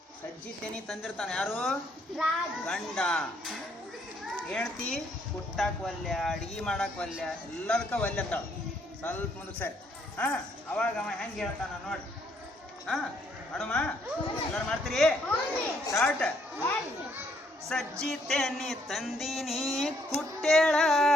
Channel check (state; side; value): normal; both; correlation 0.70